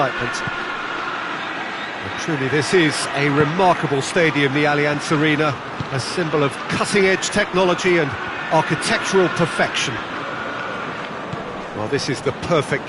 Truly, this is a remarkable stadium, the Allianz Arena, a symbol of cutting-edge technology and architectural perfection. Well, this is the perfect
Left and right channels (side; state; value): both; identical; correlation 1.00